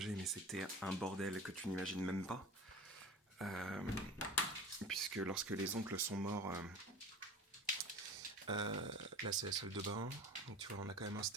mais c'était un bordel que tu n'imagines même pas. Euh, Puisque lorsque les oncles sont morts, là, c'est la salle de bain. Donc tu vois, on a quand même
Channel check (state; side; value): normal; both; correlation 0.36